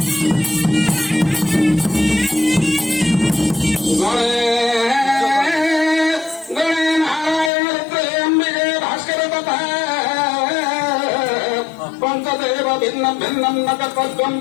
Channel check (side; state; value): right; drops out; at 7.5 s